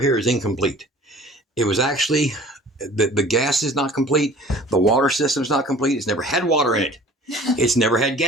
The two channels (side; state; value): both; normal; correlation 0.47